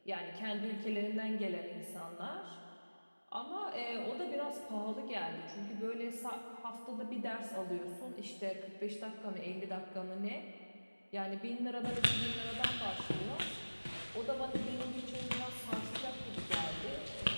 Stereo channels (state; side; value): inverted; both; correlation -1.00